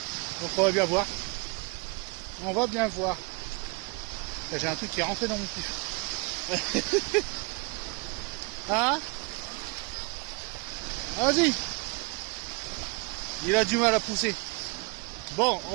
Donc on va bien voir. On va bien voir. J'ai un truc qui est rentré dans mon kiff. Hein? Vas-y. Il a du mal à pousser. Bon,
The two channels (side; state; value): left; quieter; 29.2 dB